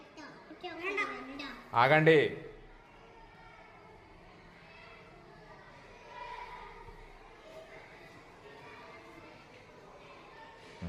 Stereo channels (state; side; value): identical; both; correlation 1.00